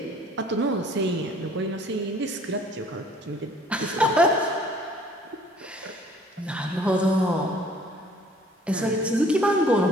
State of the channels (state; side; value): normal; both; correlation 0.55